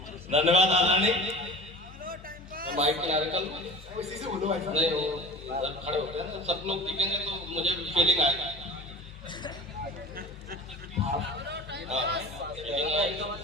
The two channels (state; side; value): normal; both; correlation 0.36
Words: धन्यवाद आदरणीय। माइक के आगे कल इसी से बोलो भाई साहब। नहीं वो खड़े होते हैं ना, सब लोग दिखेंगे तो मुझे फीलिंग आएगा।